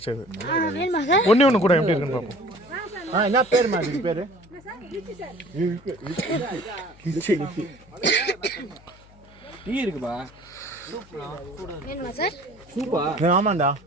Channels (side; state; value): left; noise; hum, 24 dB below the sound